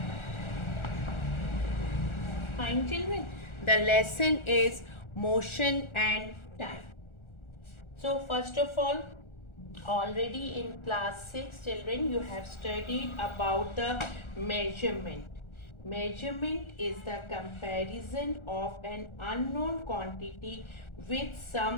fine children. The lesson is motion and time. So first of all, already in class 6 children you have studied about the measurement. Measurement is the comparison of an unknown quantity with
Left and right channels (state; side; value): late; right; 1.4 ms